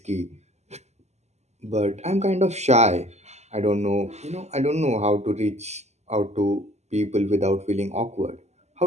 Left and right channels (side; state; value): left; late; 0.33 ms